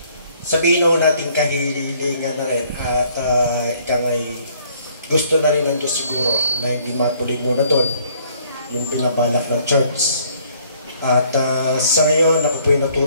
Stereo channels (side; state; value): both; inverted; correlation -0.62